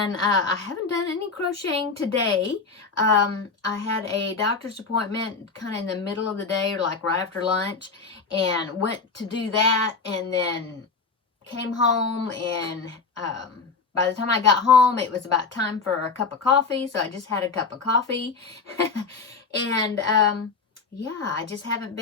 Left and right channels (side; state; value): right; quieter; 4.6 dB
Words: I haven't done any crocheting today. I had a doctor's appointment kind of in the middle of the day, or like right after lunch, and went to do that, and then came home, and by the time I got home, it was about time for a cup of coffee, so I just had a cup of coffee. And yeah,